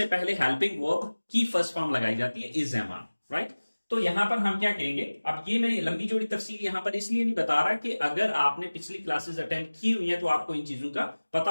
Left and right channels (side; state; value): both; inverted; correlation -1.00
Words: पहले हेल्पिंग वर्ब की फर्स्ट फॉर्म लगाई जाती है, इज एम आर, राइट। तो यहां पर हम क्या कहेंगे, अब ये मैं लंबी चौड़ी तफसील यहां पर इसलिए नहीं बता रहा कि अगर आपने पिछली क्लासेस अटेंड की हुई है तो आपको इन चीजों का पता